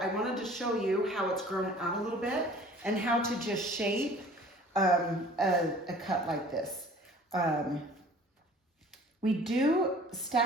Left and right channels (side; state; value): both; normal; correlation 0.49